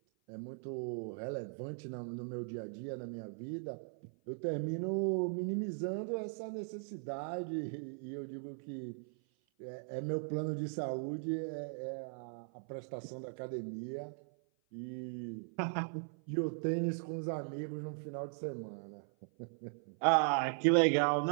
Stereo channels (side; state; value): left; silent; 52 dB below the other